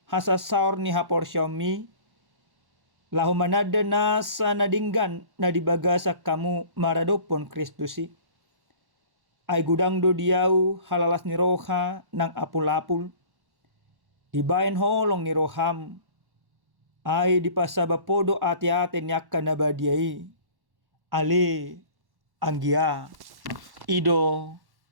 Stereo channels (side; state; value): left; late; 1.1 ms